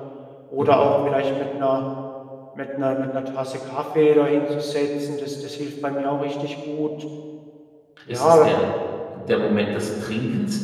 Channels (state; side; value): identical; both; correlation 1.00